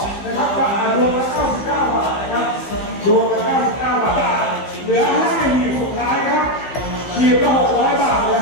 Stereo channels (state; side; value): late; right; 15 ms